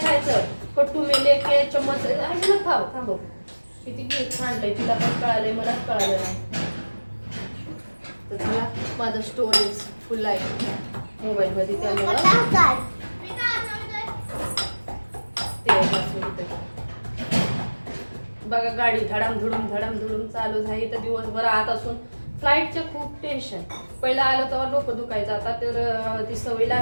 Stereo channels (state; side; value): inverted; both; correlation -1.00